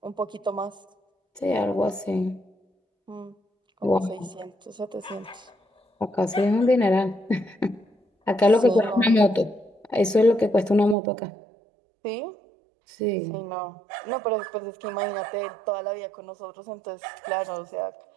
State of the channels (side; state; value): left; drops out; at 11.0 s